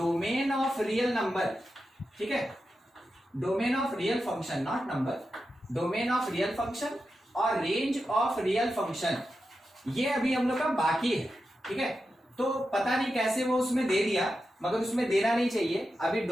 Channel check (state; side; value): normal; both; correlation 0.90